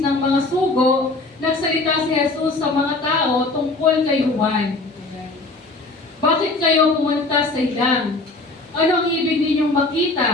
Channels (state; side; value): quieter; right; 3.2 dB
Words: mga sugo, nagsalita si Jesus sa mga tao tungkol kay Juan. Bakit kayo pumunta sa ilang? Ano ang ibig ninyong